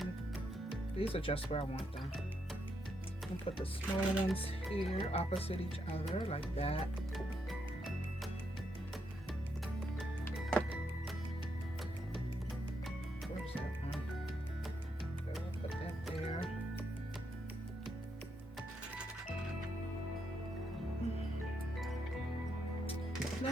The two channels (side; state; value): both; normal; correlation 0.79